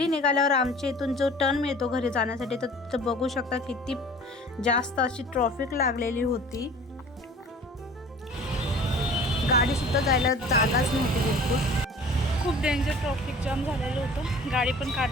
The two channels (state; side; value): normal; both; correlation 0.46